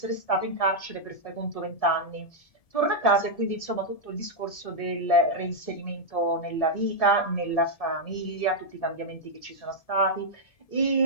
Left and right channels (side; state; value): right; late; 1.7 ms